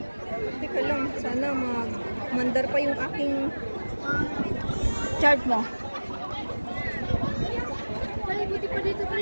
Teka lang. Sana mandar pa yung aking... Chart mo. Ay, buti pa dito,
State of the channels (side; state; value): both; inverted; correlation -1.00